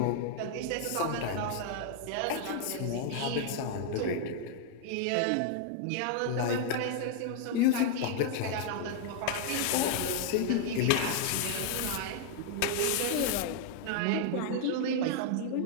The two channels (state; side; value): different; both; correlation 0.00